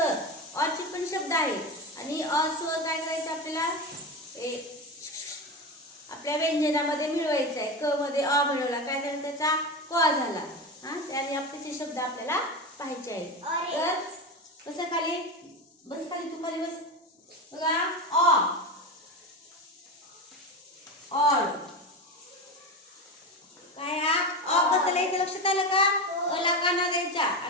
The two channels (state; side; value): normal; both; correlation 0.20